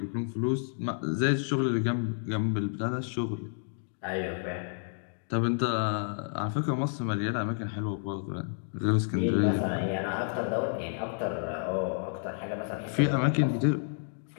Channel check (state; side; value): silent; right; digital silence